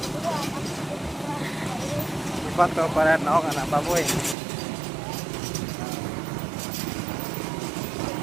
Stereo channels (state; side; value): drops out; left; at 4.4 s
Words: Foto para naong anak Baboy.